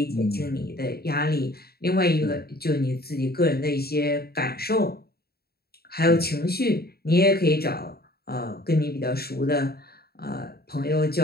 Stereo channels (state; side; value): late; right; 0.45 ms